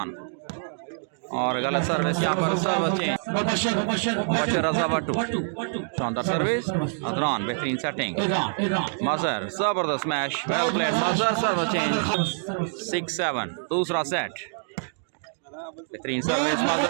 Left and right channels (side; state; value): left; silent; digital silence